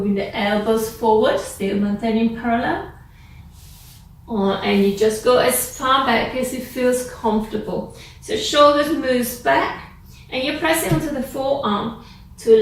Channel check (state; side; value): identical; both; correlation 1.00